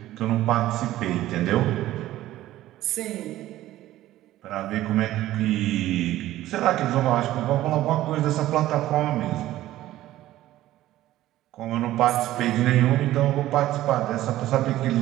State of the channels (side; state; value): left; quieter; 14.7 dB